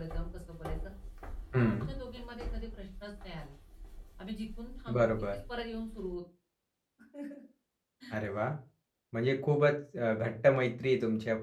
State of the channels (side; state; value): both; identical; correlation 1.00